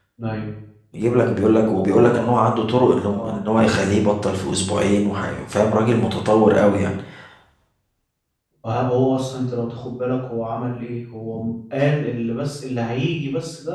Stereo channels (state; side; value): identical; both; correlation 1.00